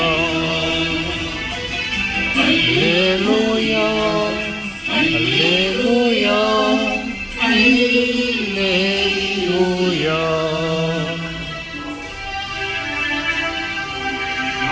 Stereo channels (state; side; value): identical; both; correlation 1.00